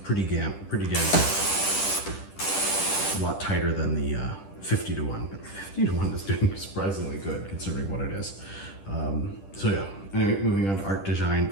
pretty damn good. A lot tighter than the 50 to 1, but 50 to 1 is doing surprisingly good considering what it is. So yeah, anyway, moving on to ArtDeShine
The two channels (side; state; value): right; late; 10 ms